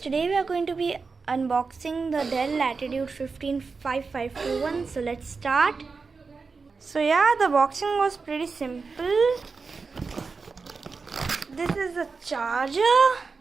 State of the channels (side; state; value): left; quieter; 4.6 dB